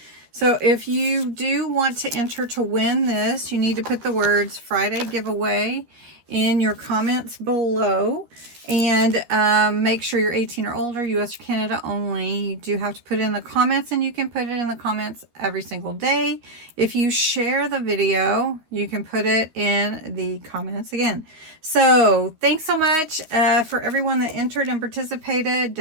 So if you do want to enter to win this, you need to put the words Friday giveaway in your comments below. And make sure you're 18 or older, US or Canada only. You do have to put it in the comments, and you can put it in the comments every single day. If you share the video, you can put it in the comments again. So thanks so much for everyone that entered and participated.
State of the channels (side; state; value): left; late; 13 ms